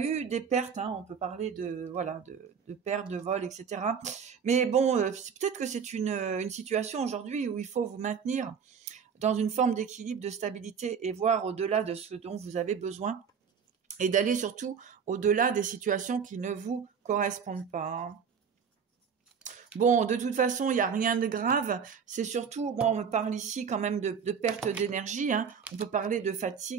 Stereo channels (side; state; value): left; quieter; 6.7 dB